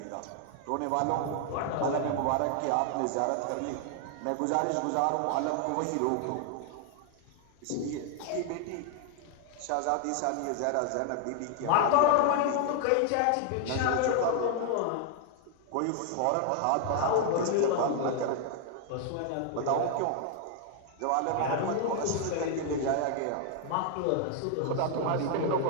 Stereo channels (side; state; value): both; different; correlation 0.00